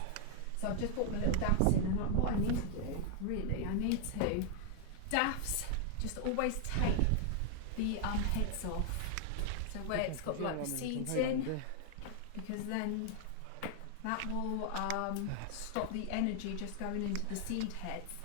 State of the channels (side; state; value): both; different; correlation 0.00